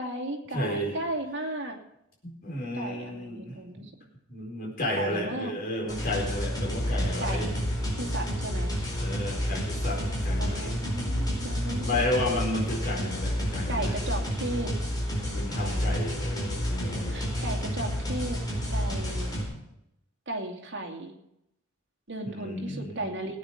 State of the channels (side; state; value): both; normal; correlation 0.56